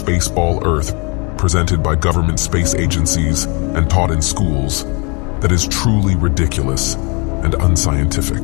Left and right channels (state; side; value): quieter; right; 31.3 dB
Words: Earth presented by government space agencies and taught in schools that is truly ridiculous and unscientific.